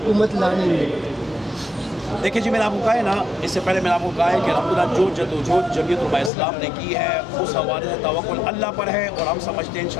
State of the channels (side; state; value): right; drops out; at 6.3 s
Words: لانے میں دیکھیں جی میں نے آپ کو کہا ہے نا اس سے پہلے میں نے آپ کو کہا ہے کہ الحمدللہ جو جدوجہد جمعیت علماء اسلام نے کی ہے اس حوالے سے توکل اللہ پر ہے اور ہم سمجھتے ہیں